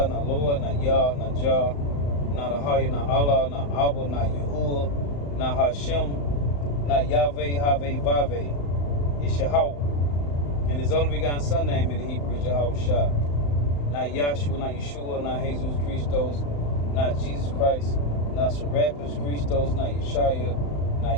not Lord, not Yah, not Jah, not Ahaya, not Allah, not Abba, not Yahuwah, not Hashem, not Yahweh, Haveh, Vaveh. It's Yahweh. And his only begotten son name in the Hebrew is Yahweh Shah. Not Yahshua, not Yeshua, not Jesus Christos, not Jesus Christ, not Serapis Christos, not Yeshaya, not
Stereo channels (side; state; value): right; late; 35 ms